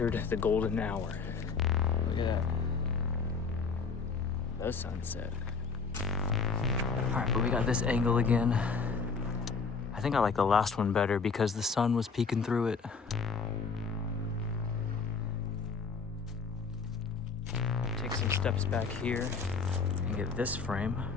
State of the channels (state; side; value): quieter; right; 5.0 dB